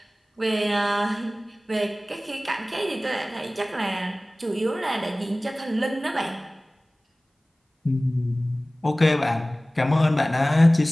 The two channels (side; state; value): both; normal; correlation 0.98